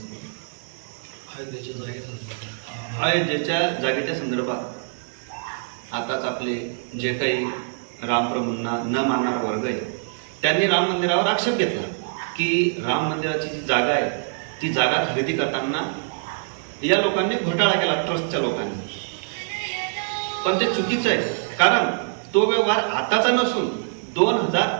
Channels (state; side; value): silent; left; digital silence